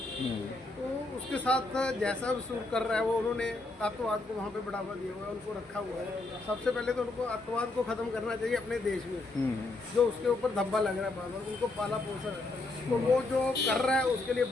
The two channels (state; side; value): quieter; right; 3.1 dB